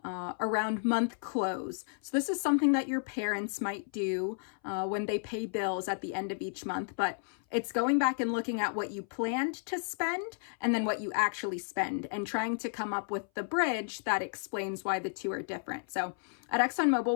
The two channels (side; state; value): right; silent; 56 dB below the other